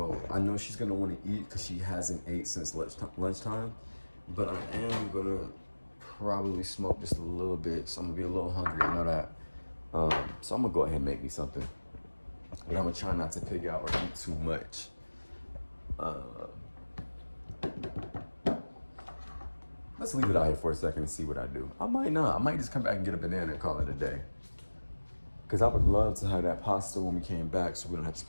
I know she's gonna want to eat because she hasn't ate since lunchtime. But I am gonna probably smoke just a little bit, so I'm gonna be a little hungry. I know that. So I'm gonna go ahead and make me something, but I'm gonna try not to pig out or eat too much. Let's leave it out here for a second and see what I do. I might not. I might just come back and get a banana and call it a day. Because I would love to have that pasta when we came back, so we don't have to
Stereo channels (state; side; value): inverted; both; correlation -1.00